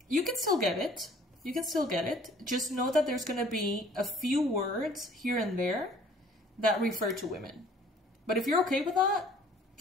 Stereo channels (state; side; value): normal; both; correlation 0.54